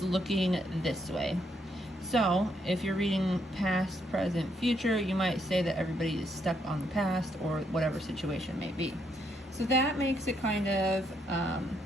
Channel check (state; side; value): normal; both; correlation 0.74